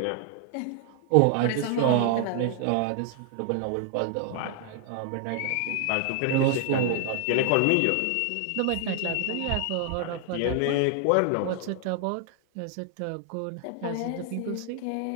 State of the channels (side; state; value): both; different; correlation 0.00